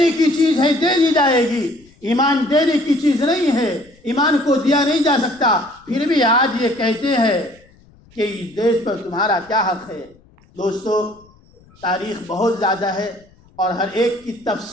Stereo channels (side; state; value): left; noise; rumble, 29 dB below the sound